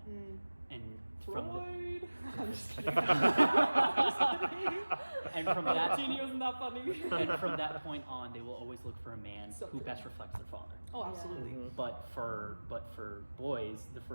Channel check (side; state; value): both; inverted; correlation -1.00